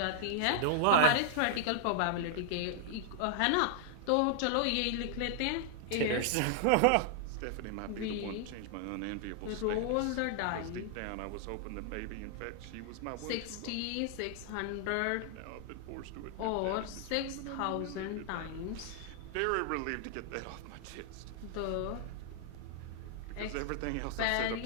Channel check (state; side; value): different; both; correlation 0.00